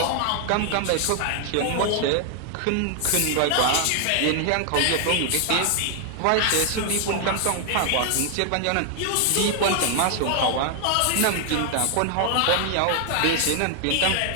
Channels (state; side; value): different; both; correlation 0.00